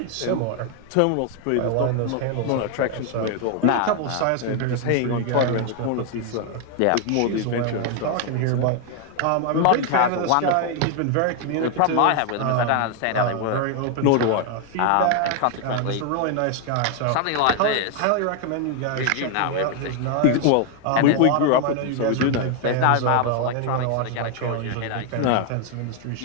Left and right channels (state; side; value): different; both; correlation 0.00